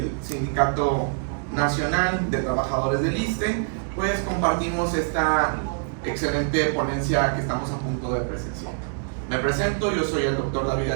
Sindicato Nacional de Trabajadores del ISSSTE. Pues compartimos esta excelente ponencia que estamos a punto de presenciar. Me presento, yo soy el doctor David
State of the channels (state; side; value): silent; left; digital silence